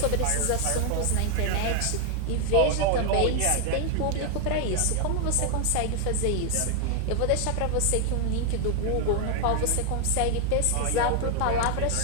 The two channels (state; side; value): different; both; correlation 0.00